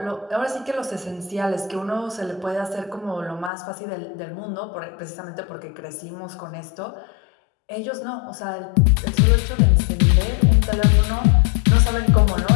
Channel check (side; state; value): right; drops out; at 3.5 s